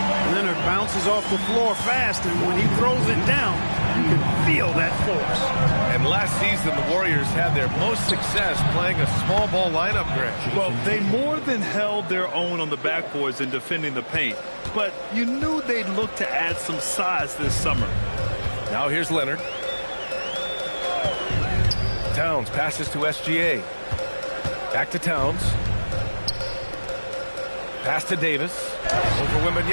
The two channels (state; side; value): inverted; both; correlation -1.00